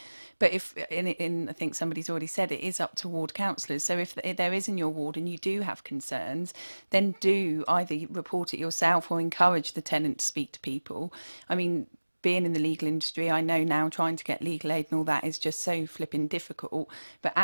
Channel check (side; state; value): both; inverted; correlation -1.00